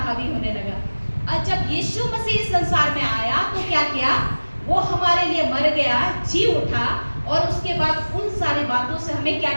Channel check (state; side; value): inverted; both; correlation -1.00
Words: होने लगा। और जब यीशु मसीह इस संसार में आया तो क्या किया, वो हमारे लिए मर गया, जी उठा, और उसके बाद उन सारी बातों से हमें क्या